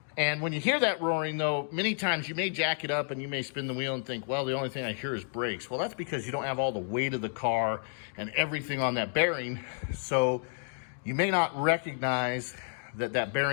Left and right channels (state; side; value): silent; right; 57 dB below the other